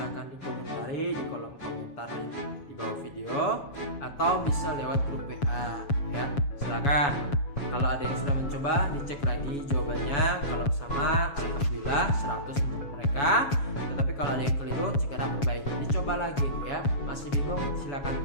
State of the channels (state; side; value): late; right; 7.1 ms